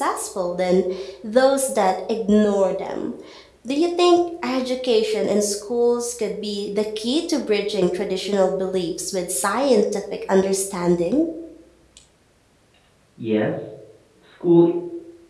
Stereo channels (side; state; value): both; identical; correlation 1.00